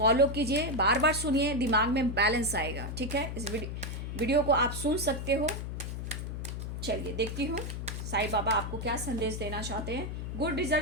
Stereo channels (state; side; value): noise; left; hum, 5 dB below the sound